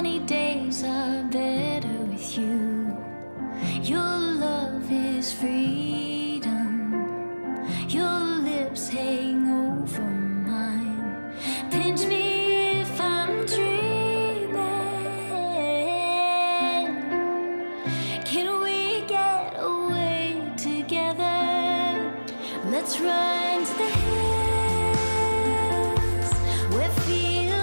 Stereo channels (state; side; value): inverted; both; correlation -1.00